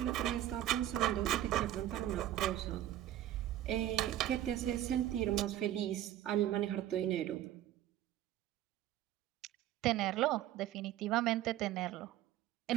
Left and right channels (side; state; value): left; quieter; 12.8 dB